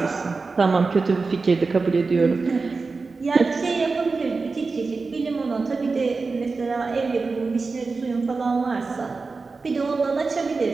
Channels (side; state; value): left; quieter; 4.2 dB